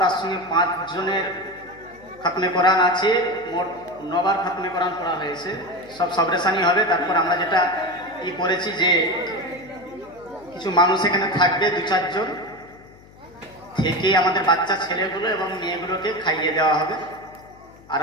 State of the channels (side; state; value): left; noise; hum, 24 dB below the sound